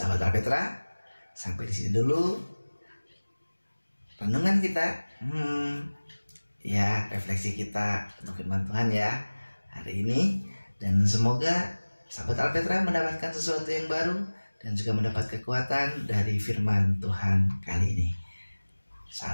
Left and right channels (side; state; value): both; inverted; correlation -1.00